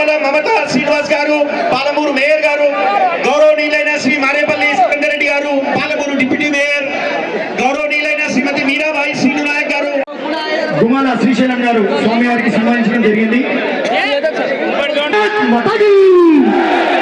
మమతా శ్రీనివాస్ గారు పాలమూరు మేయర్ గారు, గౌరవనీయులైన శ్రీ మారేపల్లి రెడ్డి గారు పాలమూరు డిప్యూటీ మేయర్, గౌరవనీయులైన శ్రీమతి మీరాబాయి శ్రీను నాయక్ గారు, గుమ్మల శ్రీశైలం గారు స్వామివారికి సన్మానించడం జరిగింది.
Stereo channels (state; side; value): identical; both; correlation 1.00